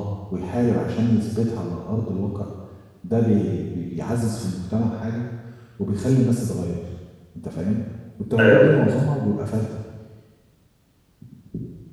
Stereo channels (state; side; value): identical; both; correlation 1.00